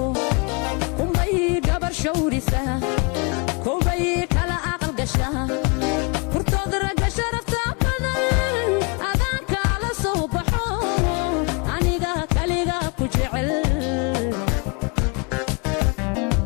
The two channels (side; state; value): right; quieter; 31.7 dB